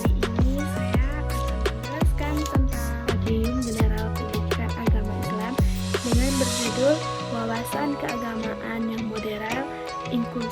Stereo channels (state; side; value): identical; both; correlation 1.00